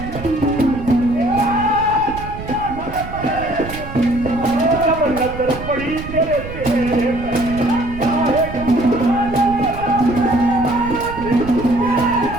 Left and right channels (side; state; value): right; noise; rumble, 11 dB below the sound